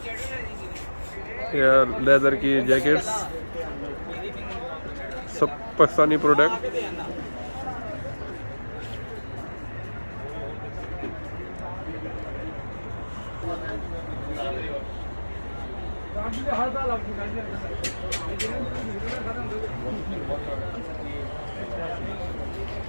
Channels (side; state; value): both; inverted; correlation -1.00